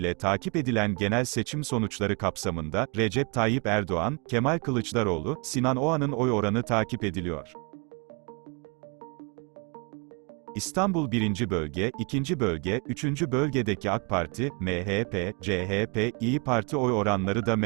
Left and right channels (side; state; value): left; quieter; 32.5 dB